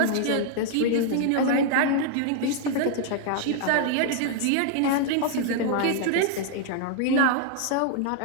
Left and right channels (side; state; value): both; different; correlation 0.00